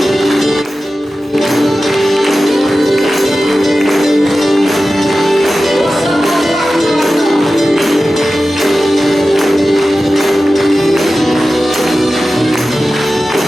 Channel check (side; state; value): both; normal; correlation 0.94